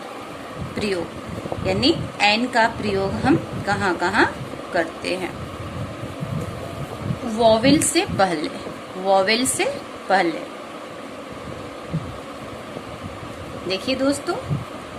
प्रयोग, यानी एन का प्रयोग हम कहाँ कहाँ करते हैं? वोवेल से पहले, वोवेल से पहले। देखिए दोस्तों,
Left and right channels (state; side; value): identical; both; correlation 1.00